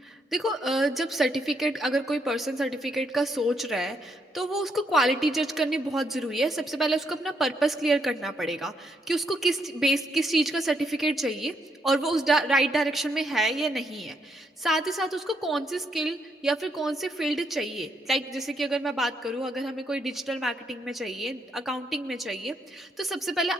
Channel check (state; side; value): normal; both; correlation 0.76